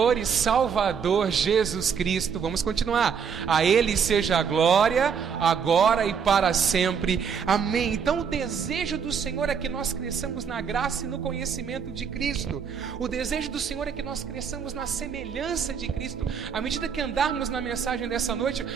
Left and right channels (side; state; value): left; quieter; 6.7 dB